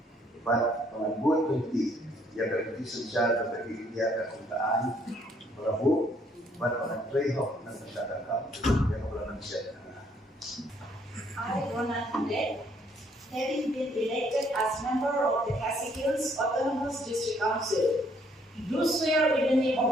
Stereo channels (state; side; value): normal; both; correlation 0.66